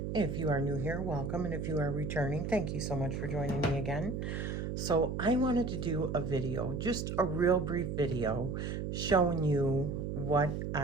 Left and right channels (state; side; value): noise; right; hum, 3 dB below the sound